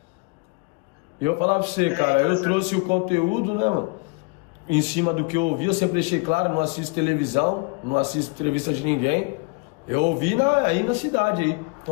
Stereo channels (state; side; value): quieter; right; 30.5 dB